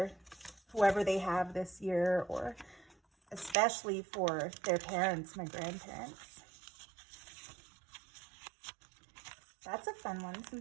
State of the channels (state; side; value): drops out; left; at 3.6 s